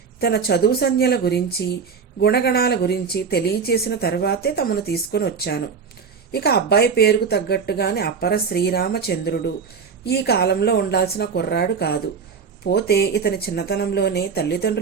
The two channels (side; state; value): left; quieter; 5.8 dB